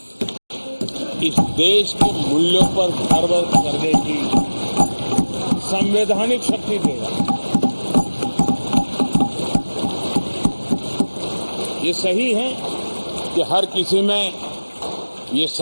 इस देश के मूल्यों पर गर्व करने की संवैधानिक शक्ति देगा। ये सही है कि हर किसी में ये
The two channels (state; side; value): inverted; both; correlation -1.00